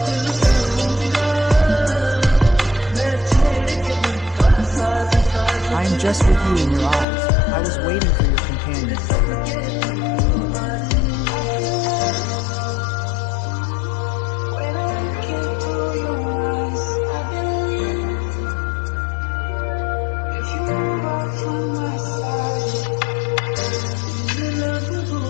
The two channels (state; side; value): drops out; right; at 7.1 s